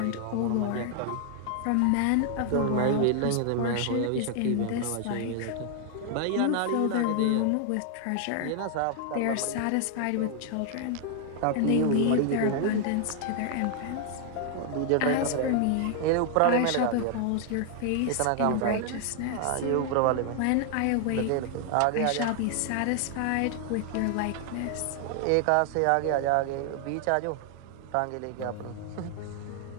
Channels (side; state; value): both; different; correlation 0.00